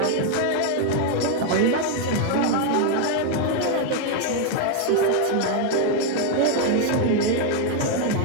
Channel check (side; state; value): both; different; correlation 0.01